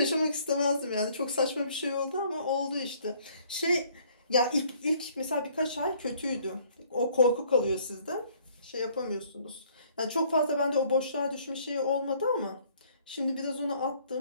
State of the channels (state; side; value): inverted; both; correlation -0.61